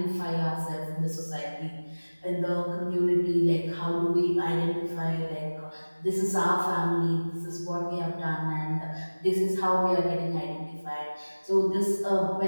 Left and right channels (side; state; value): both; inverted; correlation -1.00